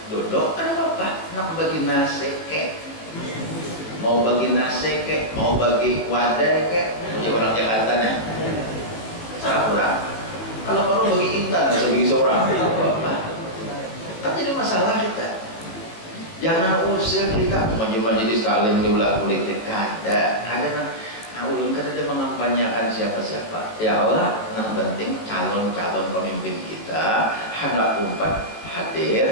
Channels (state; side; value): late; right; 18 ms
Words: duduk kan apa nak bagi nasi kek mau bagi nasi kek mau bagi wadah kek punya orang Jakarta nih salah orang kalau perlu bagi intan atau bagi seorang apa kan jadi masalah kita jangan usir kita majelis taklim di ulah politik ada ulun kan ada mengampanyakan siapa-siapa ya Allah yang penting calon-calon pemimpin kita hendak umpat